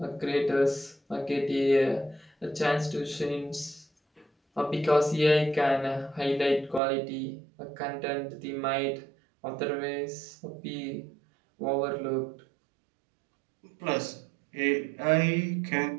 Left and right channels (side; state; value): left; drops out; at 6.8 s